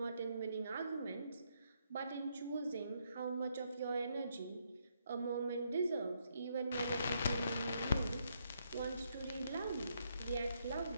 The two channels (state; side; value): inverted; both; correlation -0.75